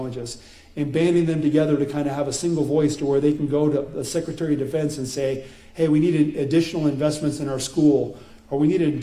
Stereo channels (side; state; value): both; identical; correlation 1.00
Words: And banding them together to kind of have a single voice to where they can go to the Secretary of Defense and say, hey, we need additional investments in our school, or we need an